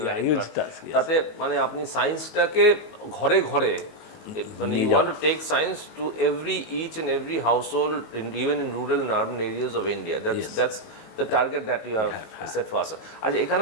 right? huge task, yes. তাতে মানে আপনি সায়েন্সটাকে ঘরে ঘরে মানে you want to take science to each and every household, even in rural and urban areas of India. That's the target that you have set for us. আচ্ছা, এখানে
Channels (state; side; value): late; right; 19 ms